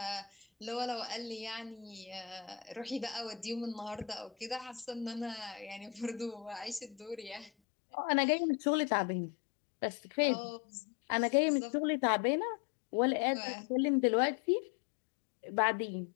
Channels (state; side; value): drops out; right; at 7.5 s